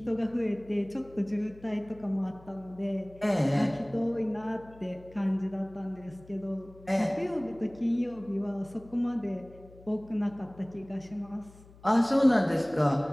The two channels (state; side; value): noise; left; hum, 22 dB below the sound